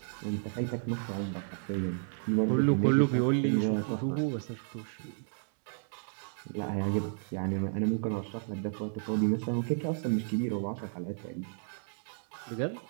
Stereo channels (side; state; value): left; silent; digital silence